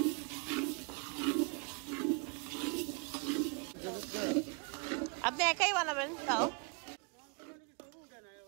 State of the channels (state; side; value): quieter; left; 34.6 dB